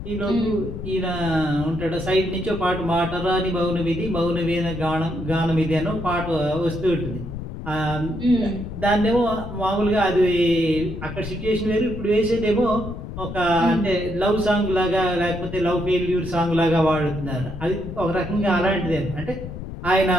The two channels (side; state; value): left; noise; rumble, 9 dB below the sound